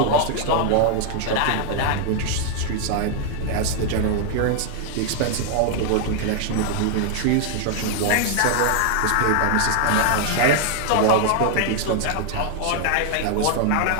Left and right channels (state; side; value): different; both; correlation 0.00